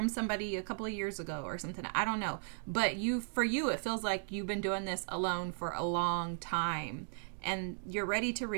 somebody a couple of years ago or something. I don't know. But for you, it feels like you've been doing this alone for a long time. And you're ready to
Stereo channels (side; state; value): left; silent; digital silence